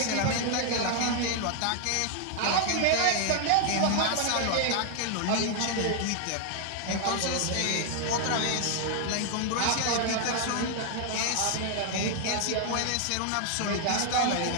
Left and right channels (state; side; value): different; both; correlation 0.00